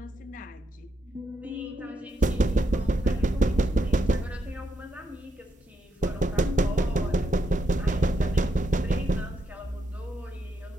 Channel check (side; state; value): both; normal; correlation 0.80